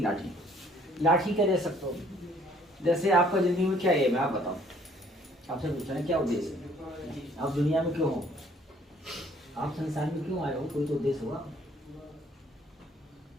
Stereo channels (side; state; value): both; normal; correlation 0.60